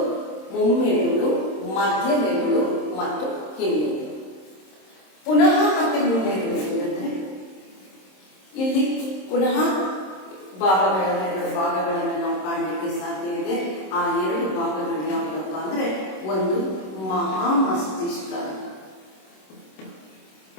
ಮುಮ್ಮೆದುಳು, ಮಧ್ಯ ಮೆದುಳು ಮತ್ತು ಹಿಮ್ಮೆದುಳು. ಪುನಃ ಮತ್ತೆ ಮುಮ್ಮೆದುಳು ಅಂದರೆ ಇಲ್ಲಿ ಪುನಃ ಎರಡು ಭಾಗಗಳನ್ನು ನಾವು ಕಾಣಲಿಕ್ಕೆ ಸಾಧ್ಯ ಇದೆ. ಆ 2 ಭಾಗಗಳು ಯಾವುದಪ್ಪ ಅಂದ್ರೆ, ಒಂದು ಮಹಾಮಸ್ತಿಷ್ಕ,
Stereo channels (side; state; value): right; late; 26 ms